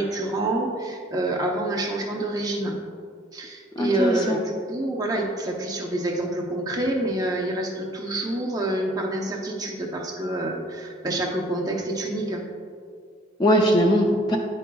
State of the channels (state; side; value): normal; both; correlation 0.56